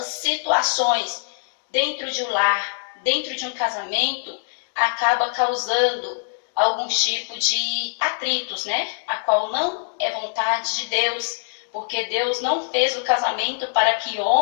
situações dentro de um lar, dentro de um casamento, acaba causando algum tipo de atritos, né? A qual não é vontade de Deus, porque Deus não fez o casamento para que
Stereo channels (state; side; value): silent; right; digital silence